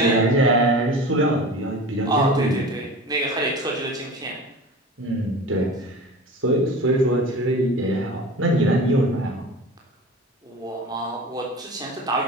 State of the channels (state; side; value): normal; both; correlation 0.35